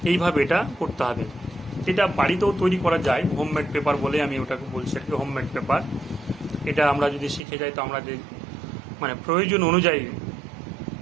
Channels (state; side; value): drops out; left; at 7.4 s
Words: এইভাবে এটা করতে হবে। এটা বাড়িতেও তৈরি করা যায়, হোমমেড পেপার বলে আমি ওটাকে বলছি আর কি, হোমমেড পেপার। এটা আমরা যদি শিখে যাই তো আমরা যে মানে প্রয়োজন অনুযায়ী